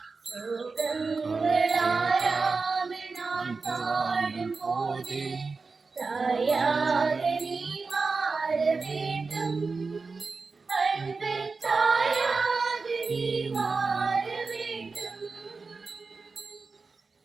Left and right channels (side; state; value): left; quieter; 4.3 dB